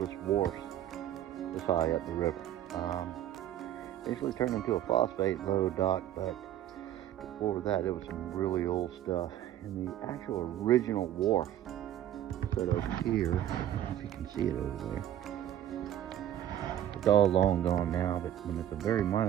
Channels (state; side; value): quieter; left; 11.7 dB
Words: wharfs this high up the river. Basically turned into a phosphate load dock, but before that it was some really old stuff. And the actual original wharf right over here, I don't know if you can see it over there. It's all long gone now, but when it's a very